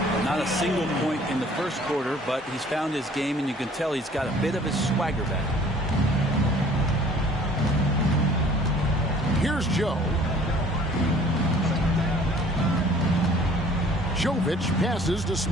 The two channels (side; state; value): both; normal; correlation 0.53